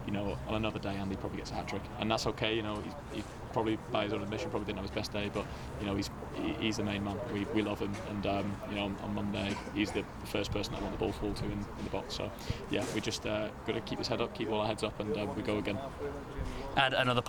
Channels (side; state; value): both; identical; correlation 1.00